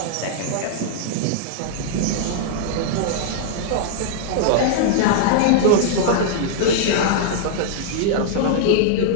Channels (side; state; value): both; different; correlation -0.01